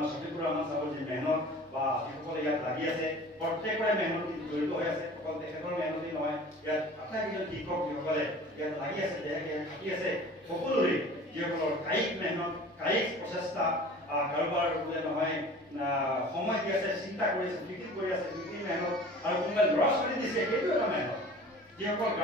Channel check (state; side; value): normal; both; correlation 0.43